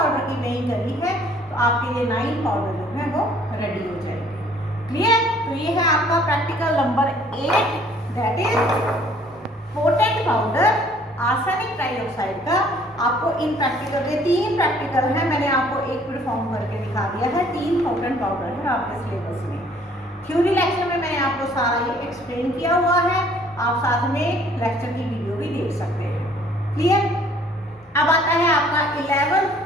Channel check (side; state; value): both; normal; correlation 0.58